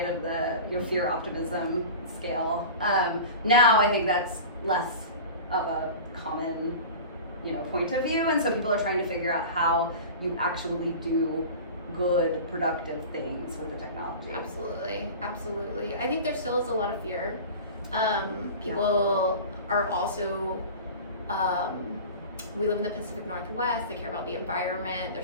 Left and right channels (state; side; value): inverted; both; correlation -0.35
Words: of the fear optimism scale. Now I think that's less of a common point of view, and so people are trying to figure out how you actually do good, productive things with the technology. Absolutely. I think there still is a lot of fear. People are also, we live in the Pacific Northwest, they care about the environment.